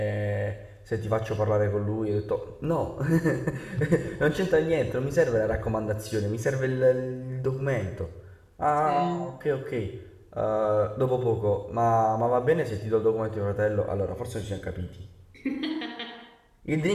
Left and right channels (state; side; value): identical; both; correlation 1.00